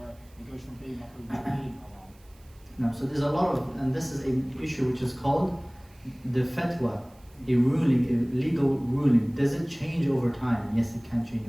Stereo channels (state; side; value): noise; right; hiss, 30 dB below the sound